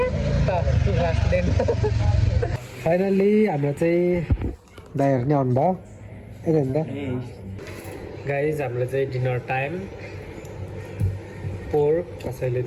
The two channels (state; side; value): identical; both; correlation 1.00